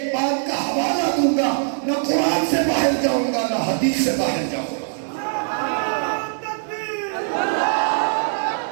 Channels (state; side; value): silent; left; digital silence